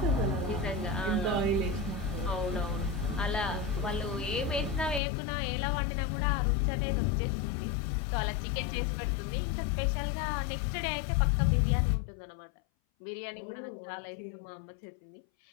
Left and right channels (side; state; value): right; drops out; at 5.0 s